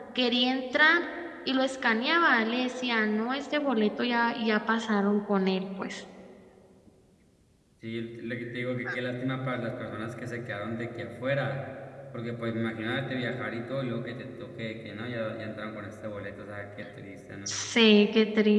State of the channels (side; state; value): both; identical; correlation 1.00